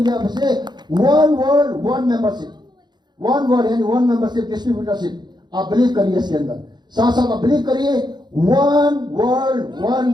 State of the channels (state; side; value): late; left; 0.21 ms